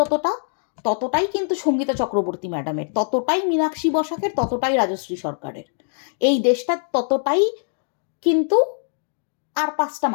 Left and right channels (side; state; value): right; silent; digital silence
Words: ততটাই কিন্তু সঙ্গীতা চক্রবর্তী ম্যাডামের, ততটাই মীনাক্ষী বসাকের, ততটাই রাজশ্রী সরকারের। এই দেশটা ততটাই কিন্তু আর পাঁচটা